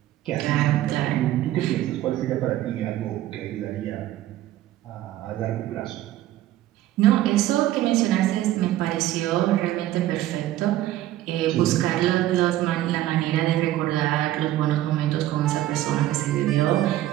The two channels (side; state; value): left; quieter; 14.2 dB